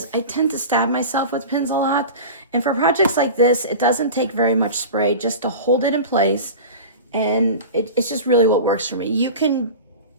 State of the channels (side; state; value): both; inverted; correlation -0.32